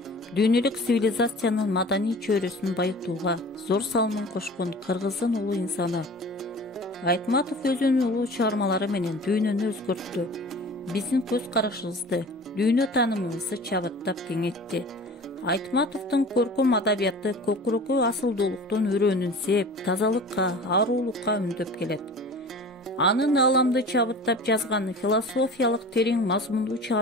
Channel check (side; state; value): both; normal; correlation 0.40